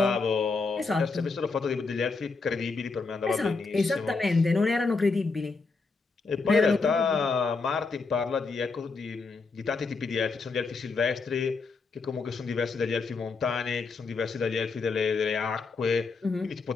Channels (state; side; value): quieter; right; 4.3 dB